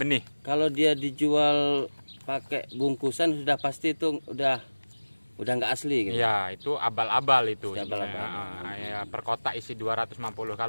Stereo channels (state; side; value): inverted; both; correlation -1.00